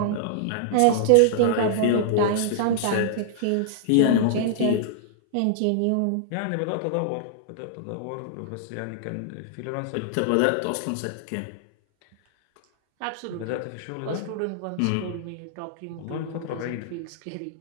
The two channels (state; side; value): different; both; correlation -0.01